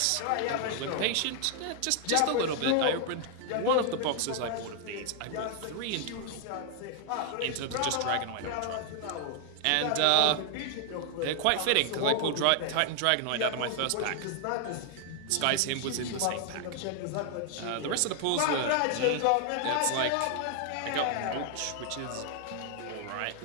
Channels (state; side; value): different; both; correlation 0.00